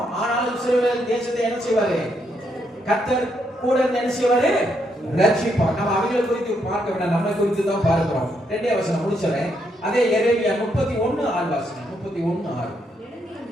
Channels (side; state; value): both; normal; correlation 0.77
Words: ஆனாலும் இஸ்ரவேல் தேசத்தை என்ன செய்வாரு? கர்த்தர் கூட என்ன செய்வாரு? ரட்சிப்பார். நம்ம அவங்களை குறித்து பார்க்க வேண்டாம், நம்மை குறித்து தான் பார்க்கிறோம். 2 வசனம் முடிச்சறேன். அதே எரேமியா 31:6. 31:6.